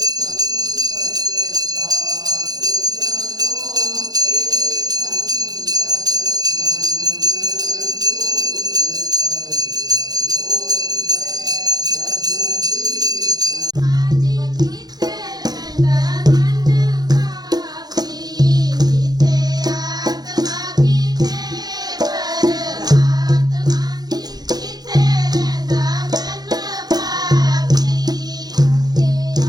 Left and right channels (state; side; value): late; left; 0.19 ms